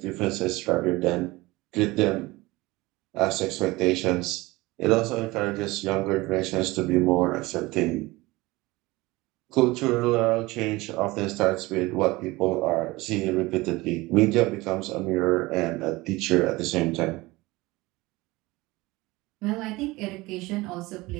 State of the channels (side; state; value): left; quieter; 21.0 dB